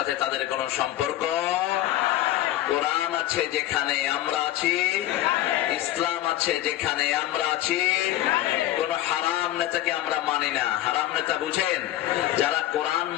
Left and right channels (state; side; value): quieter; right; 14.3 dB